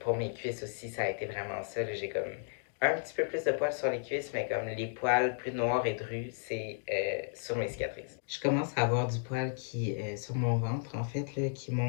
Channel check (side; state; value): right; silent; digital silence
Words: mes cuisses aussi, ça a été vraiment ça. J'ai comme un petit peu plus de poils sur les cuisses, mais comme les poils plus noirs et drus, c'est sur mes cicatrices. Je commence à avoir du poil qui sur mon ventre, en fait, là, qui